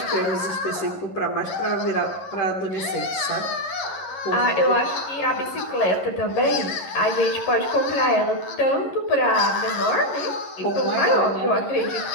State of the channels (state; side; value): late; right; 11 ms